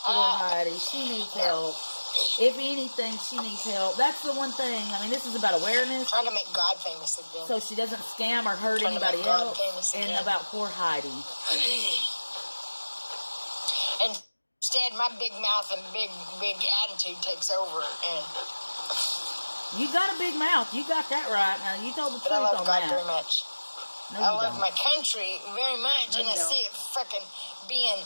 Heidi. She needs help. If anything, she needs help. That's the one thing. I mean, this is about awareness. Trying to make God famous again. So she doesn't scam or hurt anybody else. And about poor Heidi. And instead, my big mouth and big attitude takes over. And you got a big mouth. You got that right. Now, you told the truth on that. I love God very much. No, I love my country very much. And I see it freaking being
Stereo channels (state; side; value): inverted; both; correlation -1.00